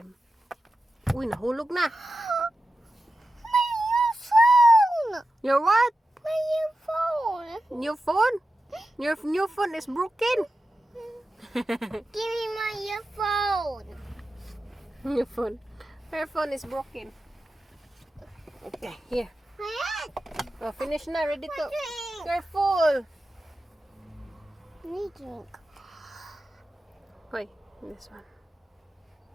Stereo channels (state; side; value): normal; both; correlation 0.92